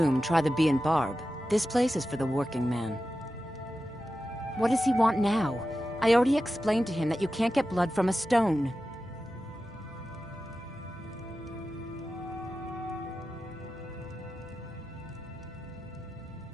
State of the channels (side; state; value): both; normal; correlation 0.92